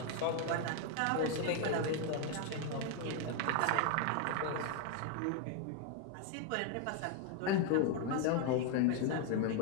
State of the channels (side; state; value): both; different; correlation 0.01